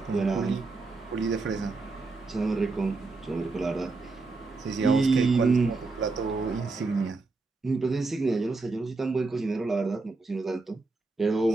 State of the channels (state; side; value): quieter; left; 3.7 dB